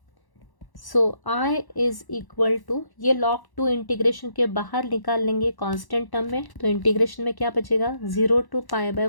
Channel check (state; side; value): late; right; 1.1 ms